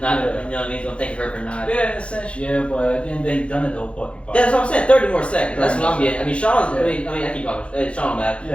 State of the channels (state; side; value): late; right; 0.060 ms